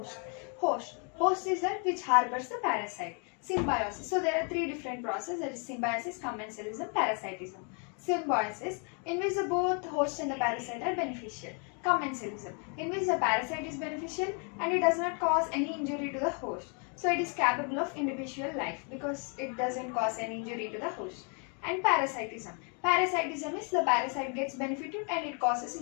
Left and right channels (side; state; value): right; quieter; 37.9 dB